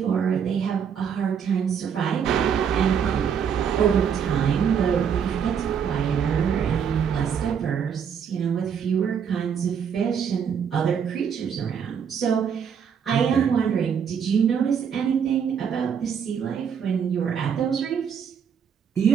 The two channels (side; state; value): left; quieter; 7.5 dB